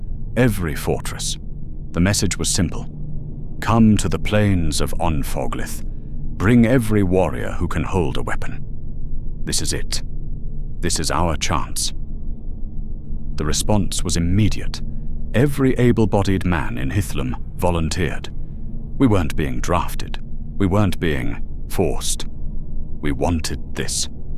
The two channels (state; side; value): identical; both; correlation 1.00